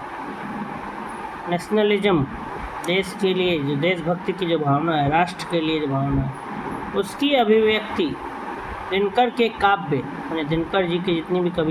नेशनलिज्म, देश के लिए जो देशभक्ति की जो भावना है, राष्ट्र के लिए जो भावना है, उसकी अभिव्यक्ति दिनकर के काव्य, यानी दिनकर जी की जितनी भी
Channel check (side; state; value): both; identical; correlation 1.00